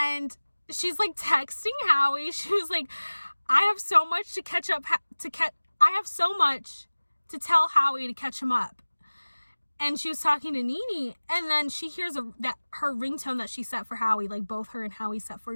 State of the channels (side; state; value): both; inverted; correlation -1.00